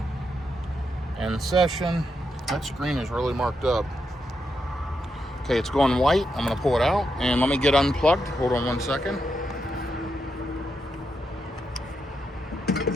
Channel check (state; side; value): normal; both; correlation 0.83